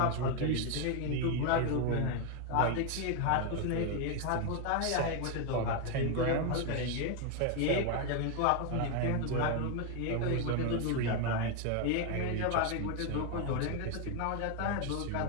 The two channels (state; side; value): different; both; correlation 0.01